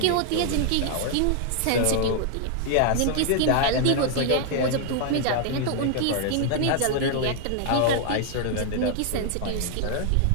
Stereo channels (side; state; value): both; different; correlation 0.00